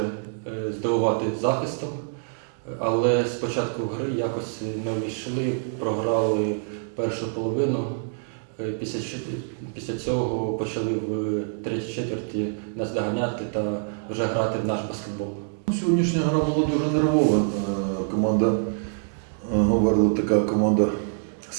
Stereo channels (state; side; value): silent; left; digital silence